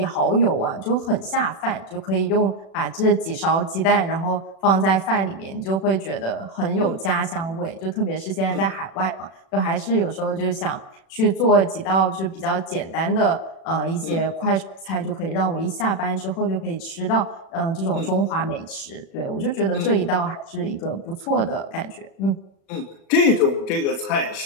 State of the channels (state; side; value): late; right; 36 ms